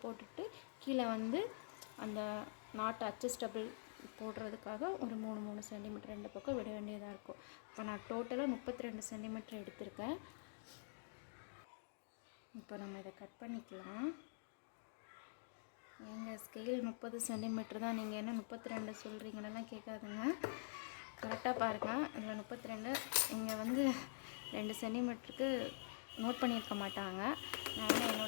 போட்டுட்டு கீழே வந்து அந்த நாட்டு அட்ஜஸ்டபிள் போடுறதுக்காக ஒரு 3 சென்டிமீட்டர் 2 பக்கம் விட வேண்டியதாக இருக்கும். இப்போ நான் டோட்டலாக 32 சென்டிமீட்டர் எடுத்திருக்கேன். இப்போ நம்ம இதை கட் பண்ணிக்கலாம். எங்கள் ஸ்கேல் 30 சென்டிமீட்டர் தான், நீங்கள் என்ன 32 சொல்கிறீங்களெல்லாம் கேட்காதுங்க. கரெக்டாக பாருங்கள். இதில் 32, இங்கே வந்து 2 சென்டிமீட்டருக்கு நோட் பண்ணியிருக்க மாட்டாங்க. நான்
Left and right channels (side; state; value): right; silent; digital silence